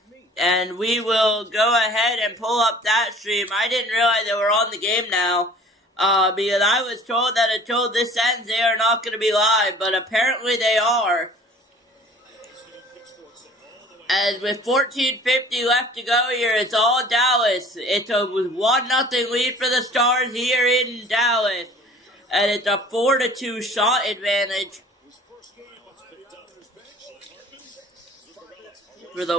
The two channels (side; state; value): both; normal; correlation 0.48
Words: And we will go ahead and pull up that stream. I didn't realize they were on the game now, because I was told that until this ends, they are not going to be live, but apparently they are. And with 14:50 left to go here, it's all Dallas. It's a 1-0 lead for the Stars here in Dallas. And it's a 4-2 shot advantage for the